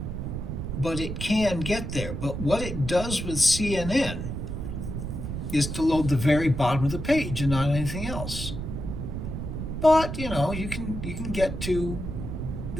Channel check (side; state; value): right; noise; rumble, 5 dB below the sound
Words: but it can get there. But what it does with CNN is to load the very bottom of the page and not anything else. But you know, you can get to